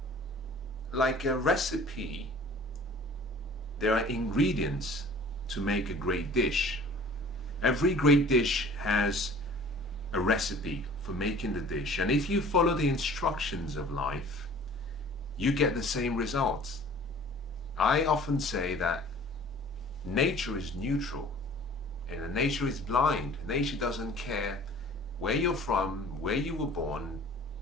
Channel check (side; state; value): both; normal; correlation 0.48